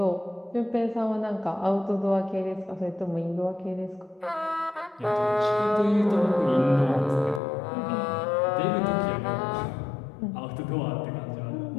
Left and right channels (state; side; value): drops out; right; at 7.4 s